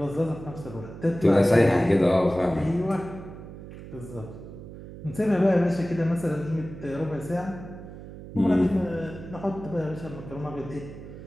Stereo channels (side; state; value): right; noise; hum, 14 dB below the sound